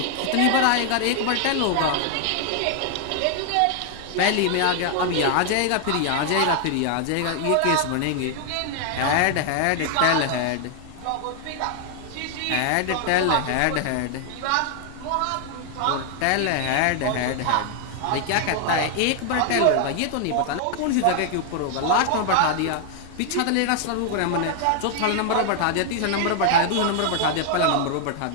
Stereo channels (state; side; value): different; both; correlation 0.00